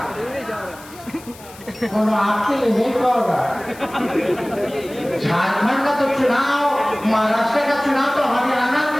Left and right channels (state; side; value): noise; left; hiss, 20 dB below the sound